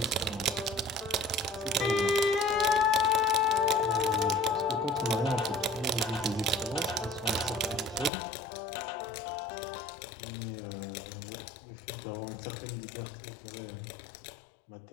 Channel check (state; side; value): drops out; right; at 8.1 s